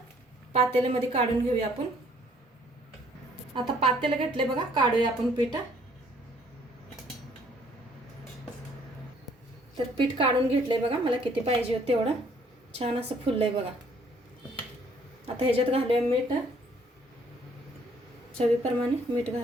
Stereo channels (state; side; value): normal; both; correlation 0.62